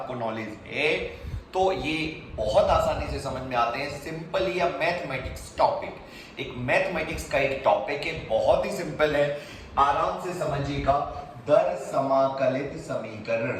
नॉलेज है तो ये बहुत आसानी से समझ में आते हैं। सिंपली अ मैथमेटिक्स टॉपिक, एक मैथमेटिक्स का एक टॉपिक है, बहुत ही सिंपल है, आराम से समझिएगा। दर समाकलित समीकरण,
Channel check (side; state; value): both; identical; correlation 1.00